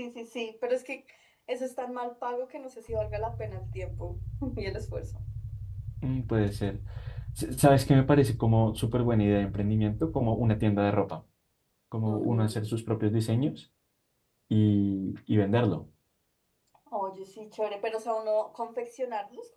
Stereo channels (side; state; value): both; identical; correlation 1.00